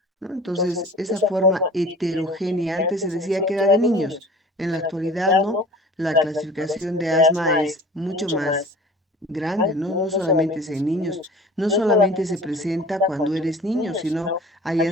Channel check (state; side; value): normal; both; correlation 0.43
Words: ¿no? Entonces, esa forma heterogénea, antes se decía que era de niños, en la actualidad no, la clasificación de asma es mucho más grande, ¿no? No solamente es en niños, no solamente se presenta cuando eres niño, sino hay